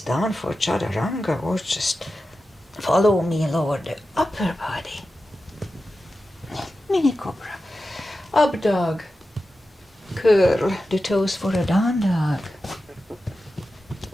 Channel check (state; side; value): normal; both; correlation 0.92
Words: for chaturanga or just follow me, lower the upper body. Mini cobra. Up dog. Curl the toes for a down dog.